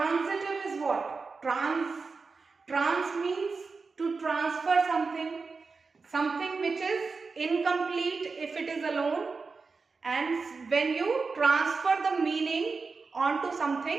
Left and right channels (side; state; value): left; quieter; 4.5 dB